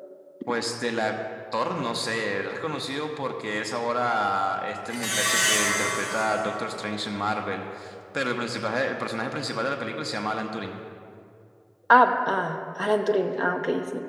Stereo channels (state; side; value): identical; both; correlation 1.00